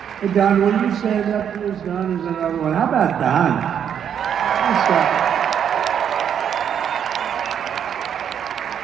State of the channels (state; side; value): quieter; left; 8.6 dB